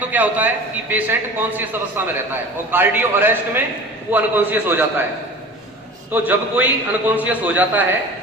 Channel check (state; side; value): normal; both; correlation 0.38